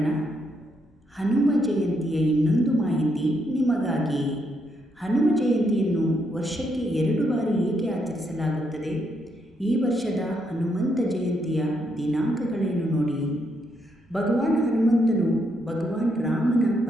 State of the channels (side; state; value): both; normal; correlation 0.77